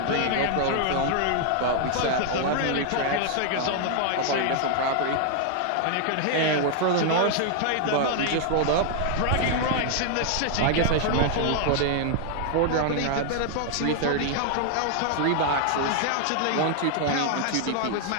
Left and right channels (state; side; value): different; both; correlation 0.00